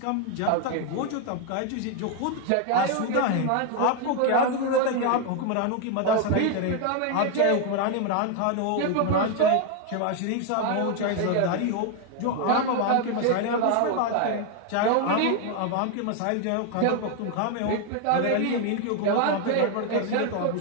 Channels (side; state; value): both; different; correlation 0.01